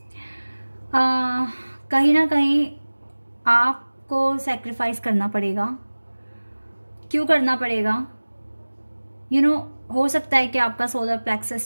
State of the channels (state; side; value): inverted; both; correlation -1.00